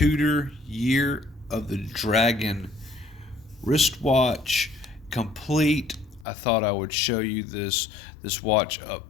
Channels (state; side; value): drops out; right; at 6.2 s